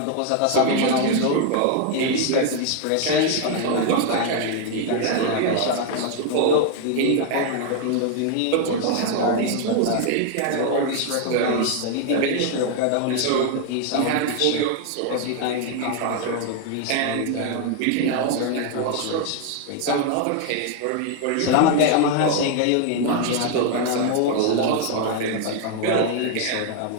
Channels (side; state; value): both; different; correlation 0.00